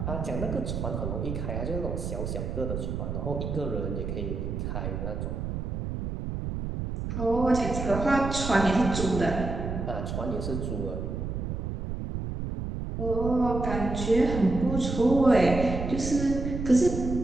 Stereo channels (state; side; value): noise; right; rumble, 4 dB below the sound